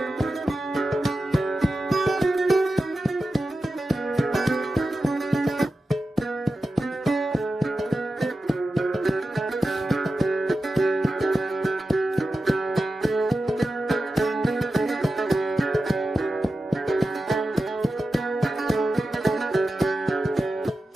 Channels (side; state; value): both; normal; correlation 0.92